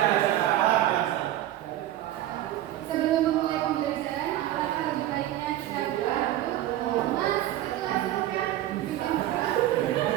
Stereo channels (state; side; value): quieter; left; 13.6 dB